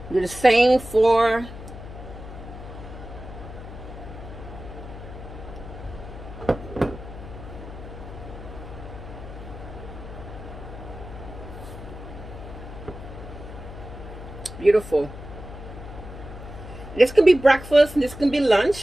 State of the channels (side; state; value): left; noise; hum, 12 dB below the sound